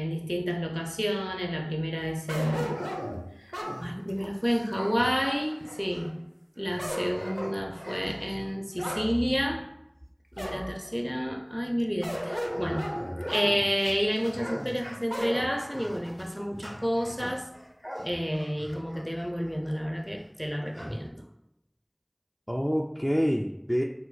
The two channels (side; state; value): both; identical; correlation 1.00